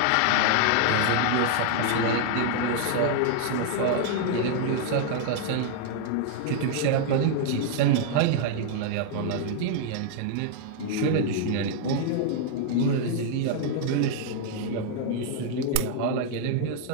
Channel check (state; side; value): different; both; correlation 0.00